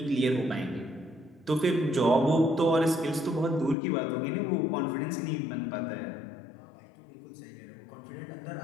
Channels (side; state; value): right; drops out; at 3.8 s